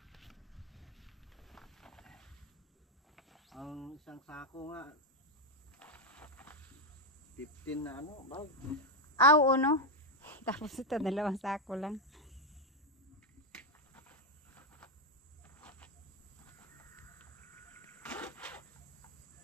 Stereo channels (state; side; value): normal; both; correlation 0.05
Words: Ang isang sako nga 15 na ano, bag. Aw, no? Tapos ito, 2 sako lang.